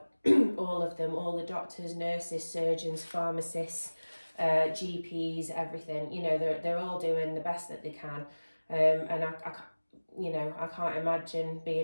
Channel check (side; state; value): both; inverted; correlation -1.00